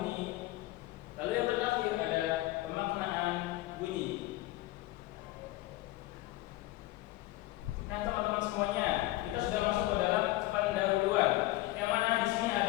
lalu yang terakhir ada pemaknaan bunyi. Nah teman-teman semuanya, kita sudah masuk ke dalam pendahuluan, yang mana di sini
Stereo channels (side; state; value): right; quieter; 17.8 dB